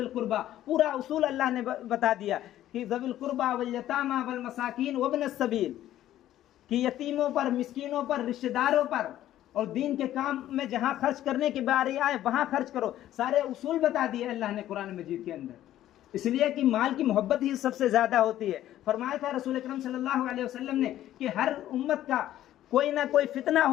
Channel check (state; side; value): quieter; right; 12.9 dB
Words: कुर्बा। पूरा उसूल अल्लाह ने बता दिया कि ज़विल कुर्बा वल यतामा वल मसाकीन वब्नस सबील, कि यतीमों पर, मिस्कीनों पर, रिश्तेदारों पर और दीन के काम में जहाँ खर्च करने की बारी आए वहाँ खर्च करो। सारे उसूल बता दिए अल्लाह ने कुरान मजीद के अंदर, इसलिए कि माल की मोहब्बत ही सबसे ज़्यादा होती है। फरमाया था रसूल अकरम सल्लल्लाहु अलैहि वसल्लम ने कि हर उम्मत का कोई ना कोई फितना